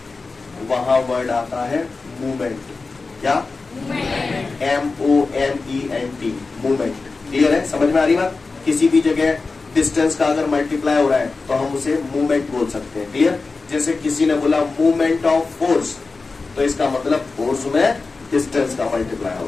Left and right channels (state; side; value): quieter; right; 4.0 dB